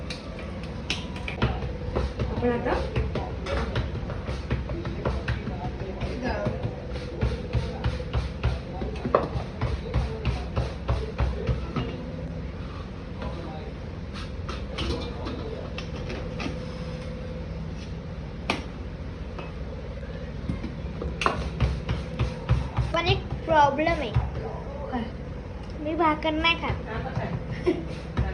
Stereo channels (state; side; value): identical; both; correlation 1.00